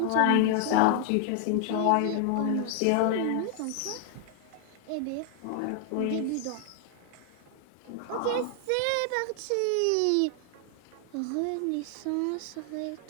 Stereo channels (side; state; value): both; different; correlation 0.00